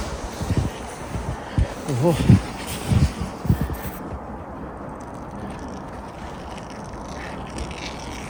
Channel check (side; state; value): both; identical; correlation 1.00